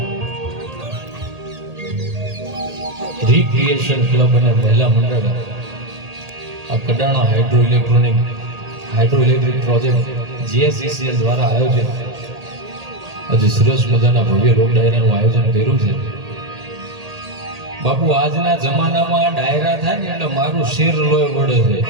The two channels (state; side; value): late; left; 1.8 ms